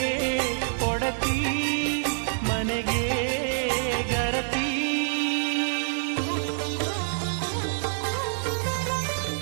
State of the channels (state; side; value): silent; left; digital silence